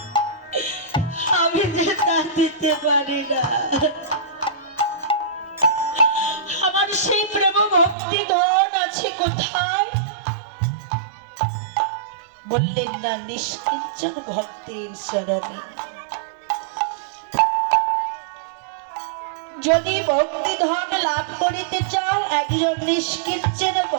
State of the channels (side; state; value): left; drops out; at 8.0 s